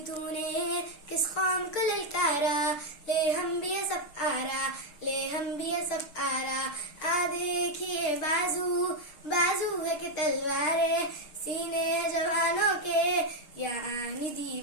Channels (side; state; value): right; late; 6.5 ms